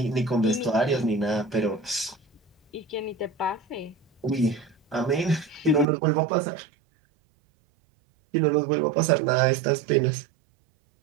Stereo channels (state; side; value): drops out; left; at 5.9 s